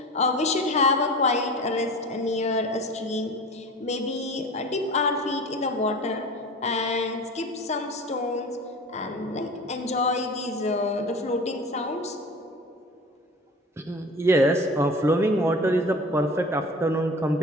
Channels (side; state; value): both; normal; correlation 0.37